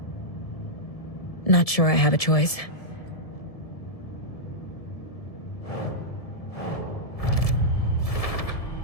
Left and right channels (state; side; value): late; right; 1.7 ms